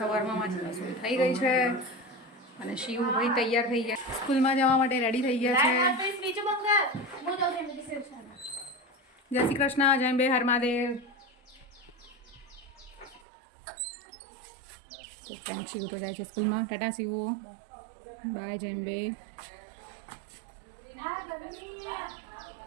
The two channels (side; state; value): left; drops out; at 13.2 s